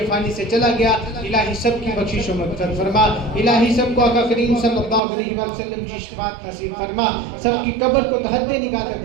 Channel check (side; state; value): left; drops out; at 5.0 s